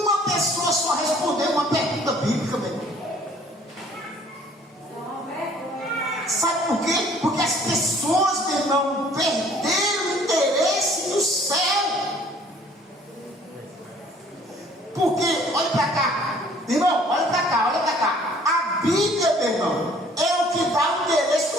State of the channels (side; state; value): both; normal; correlation 0.56